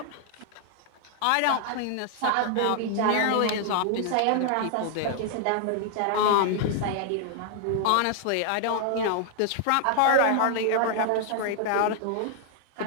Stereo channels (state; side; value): different; both; correlation 0.00